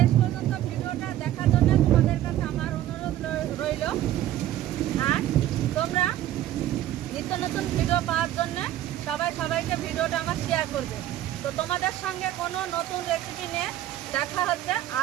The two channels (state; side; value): quieter; left; 13.0 dB